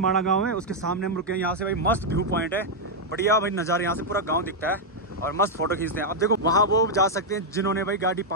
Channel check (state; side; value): normal; both; correlation -0.03